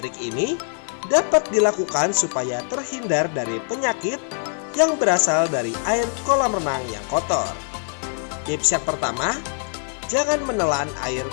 ini dapat dilakukan supaya terhindar dari penyakit yang berasal dari air kolam renang yang kotor. Tips yang pertama, jangan menelan air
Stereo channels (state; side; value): silent; right; 63 dB below the other